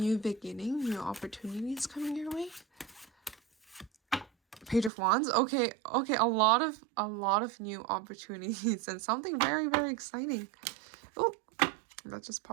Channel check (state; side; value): drops out; left; at 4.9 s